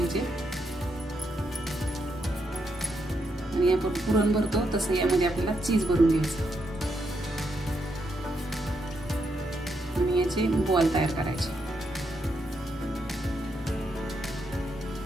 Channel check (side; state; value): both; normal; correlation 0.80